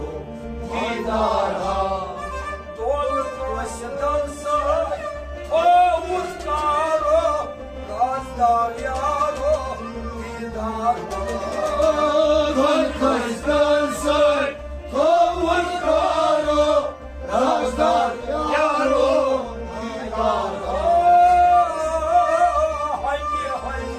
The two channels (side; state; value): both; identical; correlation 1.00